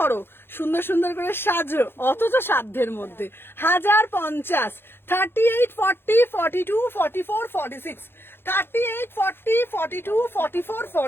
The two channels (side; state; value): right; late; 0.11 ms